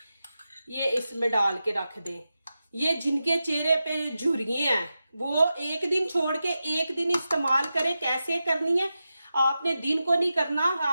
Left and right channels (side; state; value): both; inverted; correlation -0.91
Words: ये इसमें डाल के रख दें। ये जिनके चेहरे पे झुर्रियां हैं वो 1 दिन छोड़ के 1 दिन इस्तेमाल करें। कैसे करनी है, आपने दिन को नहीं करना।